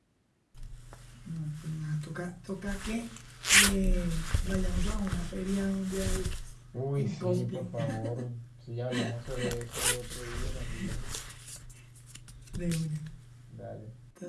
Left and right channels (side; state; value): both; identical; correlation 1.00